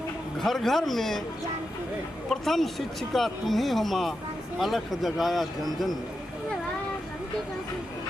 घर घर में। प्रथम शिक्षिका तुम ही हो माँ, अलख जगाया जन जन में।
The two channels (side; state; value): both; normal; correlation 0.88